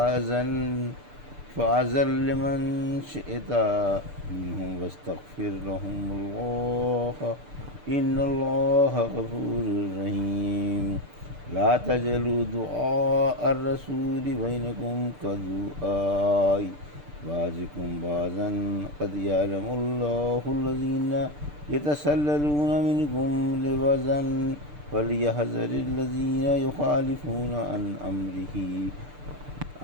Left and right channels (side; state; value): left; late; 6.8 ms